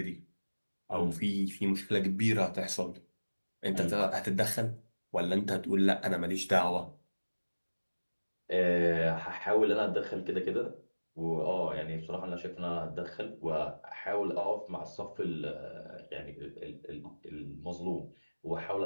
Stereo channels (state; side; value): inverted; both; correlation -1.00